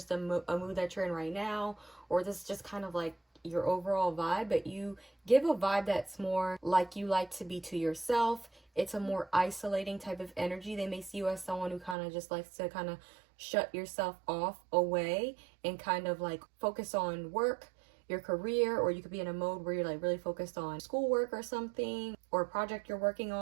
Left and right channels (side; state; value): left; drops out; at 12.0 s